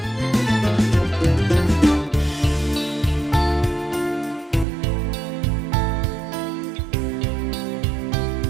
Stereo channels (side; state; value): left; drops out; at 4.7 s